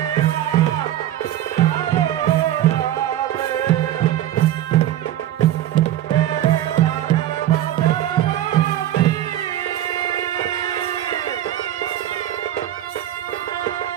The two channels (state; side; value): quieter; left; 12.4 dB